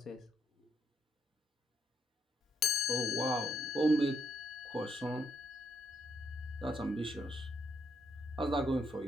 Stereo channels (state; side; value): normal; both; correlation 0.74